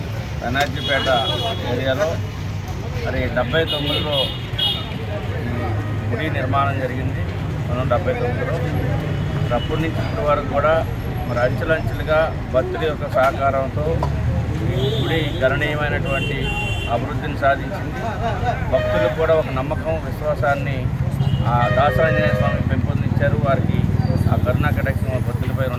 బెనర్జీపేట ఏరియాలో మరి 79లో గుడి నిర్మాణం జరిగింది. 1979లో అప్పటి నుంచి ఇప్పటి వరకు కూడా మరి అంచెలంచెలుగా భక్తుల యొక్క సహకారంతో గుడి గణనీయమైనటువంటి అభివృద్ధిని సాధించింది. భక్తులకు కూడా ఒక నమ్మకం, విశ్వాసాన్ని ఆ దాసాంజనేయ స్వామి పెంపొందించారు. వారికి ఆ కరుణా కటాక్షం భక్తులపై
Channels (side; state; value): both; identical; correlation 1.00